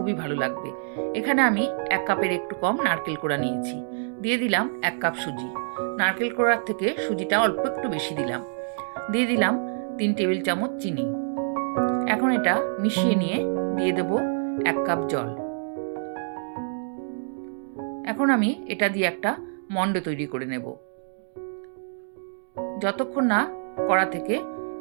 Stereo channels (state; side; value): silent; left; digital silence